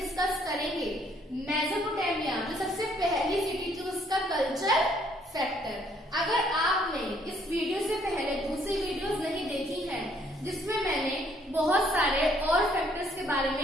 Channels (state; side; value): normal; both; correlation 0.65